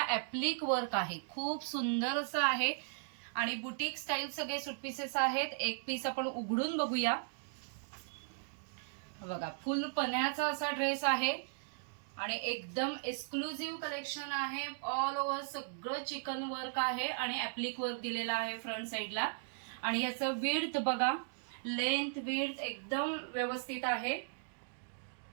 ऍप्लिक वर्क आहे। खूप सुंदर असं आहे आणि बुटीक स्टाईल सगळे सूट पीसेस आहेत। एक पीस आपण उघडून बघूया। बघा, फुल पन्ह्याचा असा ड्रेस आहे आणि एकदम एक्सक्लुझिव्ह कलेक्शन आहे। ऑल ओव्हर सगळं चिकन वर्क आहे आणि ऍप्लिक वर्क दिलेला आहे फ्रंट साइडला। आणि याचं विड्थ बघा, लेंथ विड्थ एकदम व्यवस्थित आहे।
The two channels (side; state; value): left; silent; digital silence